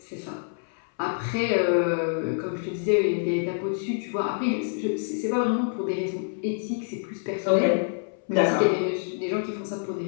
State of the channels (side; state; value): right; silent; 60 dB below the other